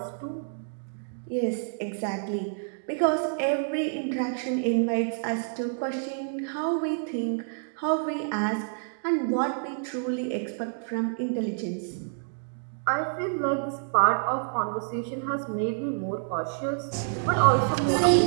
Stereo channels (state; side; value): silent; left; digital silence